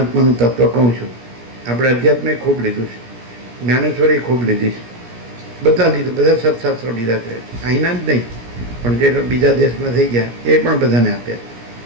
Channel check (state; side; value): late; left; 17 ms